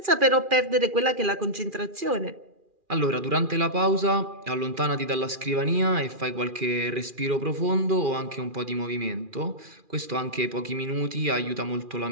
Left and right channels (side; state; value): left; late; 2.4 ms